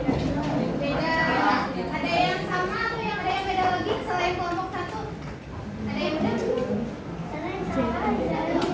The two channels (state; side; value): identical; both; correlation 1.00